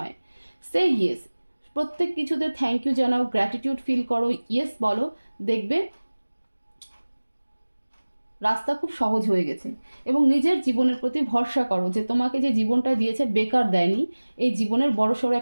সে ইয়েস। প্রত্যেক কিছুতে থ্যাংক ইউ জানাও, গ্র্যাটিটিউড ফিল করো, ইয়েস বলো, দেখবে রাস্তা খুব সহজ হয়ে গেছে। এবং নিজের জীবনের প্রতি ভরসা করো যে তোমাকে যে জীবনটা দিয়েছে বেকার দেয়নি, এই জীবনের বড়সড়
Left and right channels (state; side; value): inverted; both; correlation -1.00